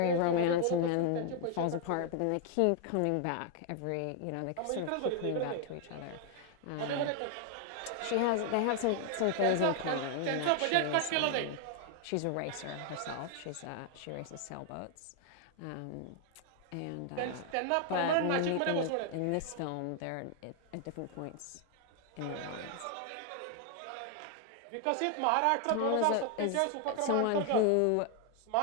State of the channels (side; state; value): both; different; correlation 0.00